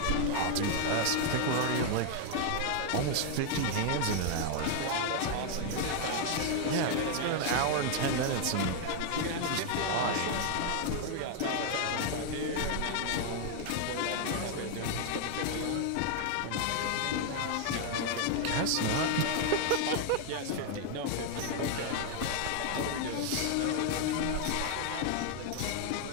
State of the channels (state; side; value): different; both; correlation 0.00